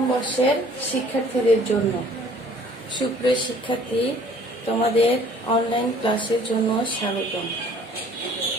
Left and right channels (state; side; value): normal; both; correlation 0.55